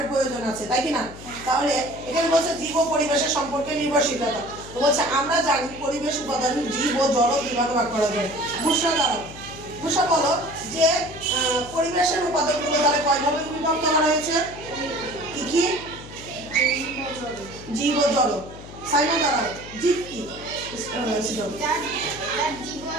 প্রয়োজন আছে, তাই কি না? তাহলে এখানে বলছে জীব ও পরিবেশের সম্পর্কে নির্ভরশীলতা। তো বলছে আমরা জানি পরিবেশ উপাদান জীব ও জড় দুইভাগে ভাগ করা যায়। বুঝতে দাঁড়াও, বুঝা বলো যে পরিবেশের উপাদানগুলো তাহলে কয়ভাবে বিভক্ত করা হয়েছে? কি কি? জীব ও জড়। সাইমা দাঁড়াও, জীব কি?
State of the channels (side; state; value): left; noise; hum, 15 dB below the sound